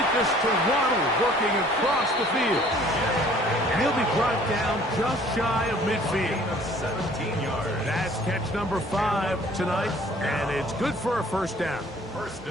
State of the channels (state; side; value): normal; both; correlation 0.54